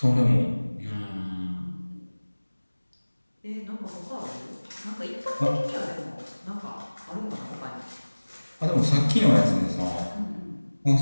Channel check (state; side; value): inverted; both; correlation -1.00